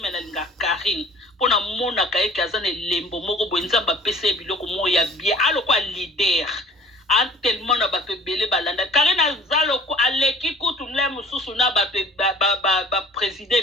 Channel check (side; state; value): both; normal; correlation 0.49